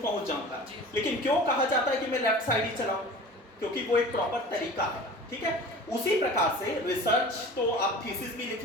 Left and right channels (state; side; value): normal; both; correlation 0.39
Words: जाऊंगा। लेकिन क्यों कहा जाता है कि मैं लेफ्ट साइड ही चलाऊं? क्योंकि वो एक प्रॉपर तरीका है, ठीक है। उसी प्रकार से रिसर्च तो आप थीसिस भी लिख